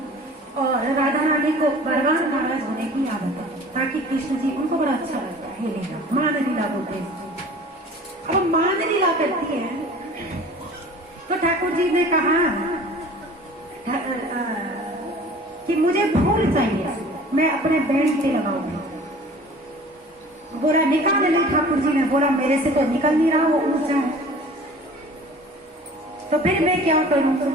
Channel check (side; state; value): both; normal; correlation 0.45